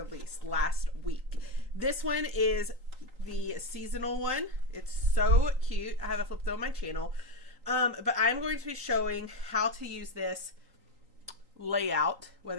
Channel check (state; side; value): late; left; 3.8 ms